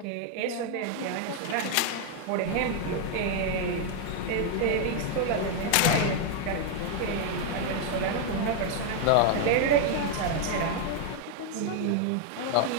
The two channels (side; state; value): both; different; correlation 0.00